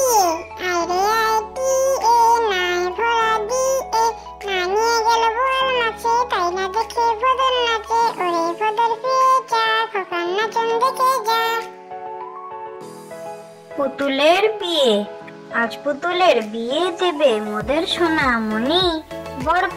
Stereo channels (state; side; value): identical; both; correlation 1.00